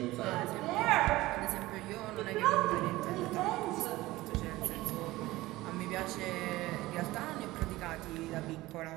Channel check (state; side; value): quieter; left; 18.4 dB